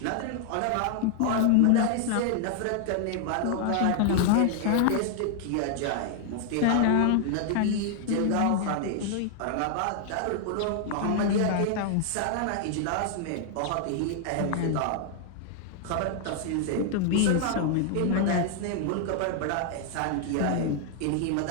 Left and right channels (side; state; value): both; different; correlation 0.00